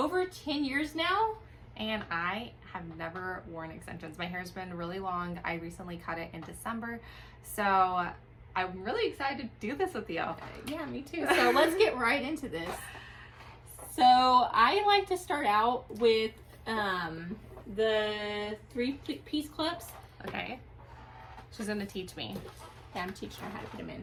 10 years now. And I have never worn extensions. My hair's been really long. I recently cut it in December. So I'm really excited to do this with you. Yeah, me too. So let's get right into this. So I like to start out with the 3-piece clips. Okay. She's gonna teach me. Yeah, I'm teaching her how to put them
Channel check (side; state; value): both; identical; correlation 1.00